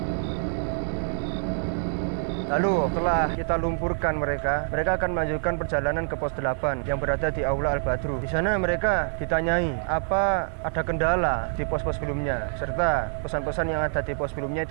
Lalu setelah kita lumpurkan mereka akan melanjutkan perjalanan ke pos 8 yang berada di Aula Al-Badru. Di sana mereka ditanyai apa ada kendala di pos-pos sebelumnya, serta pesan-pesan yang ada di pos sebelumnya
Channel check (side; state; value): left; silent; 57 dB below the other